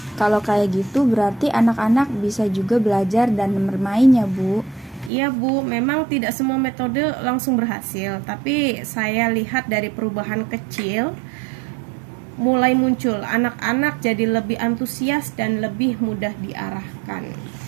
kalau kayak gitu berarti anak-anak bisa juga belajar dan bermain ya Bu. Iya, Bu, memang tidak semua metode langsung berhasil, tapi saya lihat dari perubahan kecil mulai muncul. Anak-anak jadi lebih antusias dan lebih mudah diarahkan.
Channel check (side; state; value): left; drops out; at 5.1 s